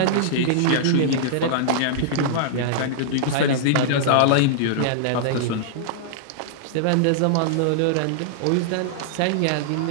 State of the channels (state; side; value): different; both; correlation -0.01